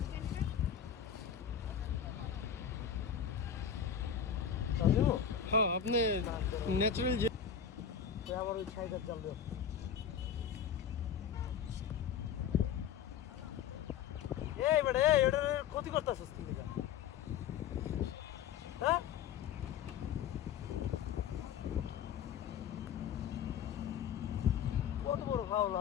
আপনি ন্যাচারাল যে আবার ওই ছাইটার জাল দেব। এই বেটা এটার ক্ষতি করতেছিস কি লিগা? হ্যাঁ কত বড় ফাউল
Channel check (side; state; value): right; quieter; 8.0 dB